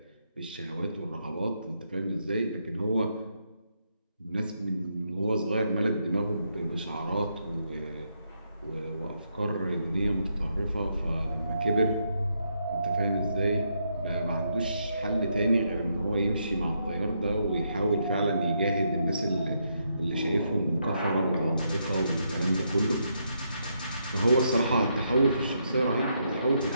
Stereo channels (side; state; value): both; inverted; correlation -0.78